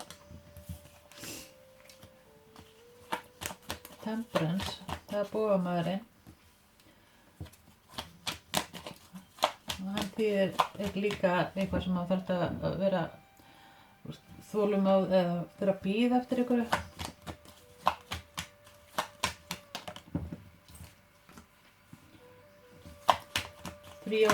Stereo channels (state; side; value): identical; both; correlation 1.00